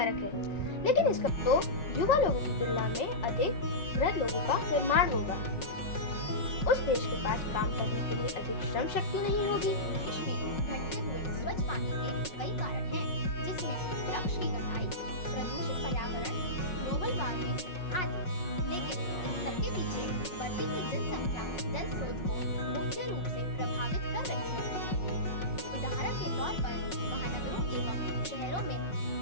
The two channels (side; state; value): right; late; 5.5 ms